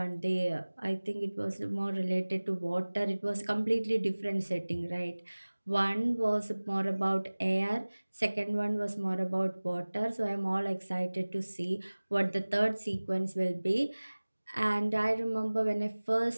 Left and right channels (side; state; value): both; inverted; correlation -1.00